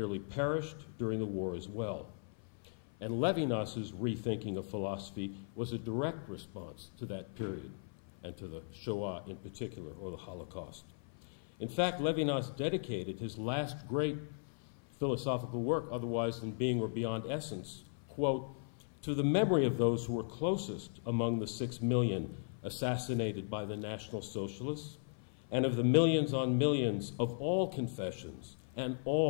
perished during the war as well. And Levinas's rethinking of philosophy was a direct response to that period and to the Shoah in particular, or the Holocaust. In fact, Levinas dedicated his last great philosophical work, Otherwise Than Being or Beyond Essence, quote, to the memory of those who were closest among the 6 million assassinated by the National Socialists, and of the millions on millions of all confessions and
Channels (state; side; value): silent; right; 53 dB below the other